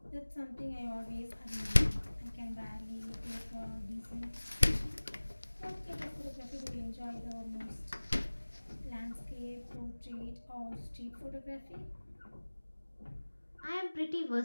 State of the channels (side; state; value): both; inverted; correlation -1.00